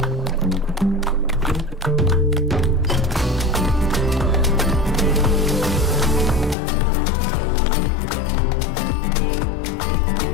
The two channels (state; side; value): drops out; right; at 6.6 s